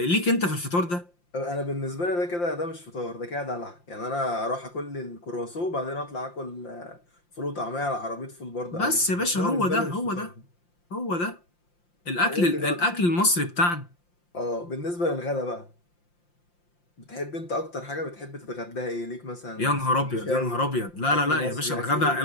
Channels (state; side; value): late; right; 5.7 ms